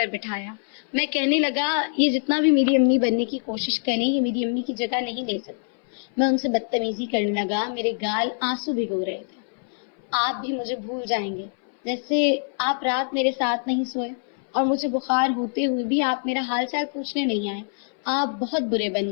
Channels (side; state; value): right; silent; 60 dB below the other